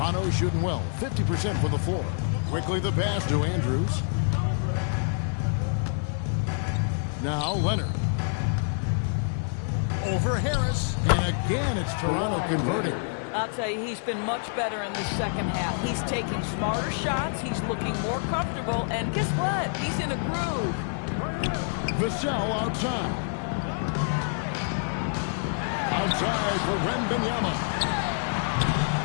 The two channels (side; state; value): right; silent; 60 dB below the other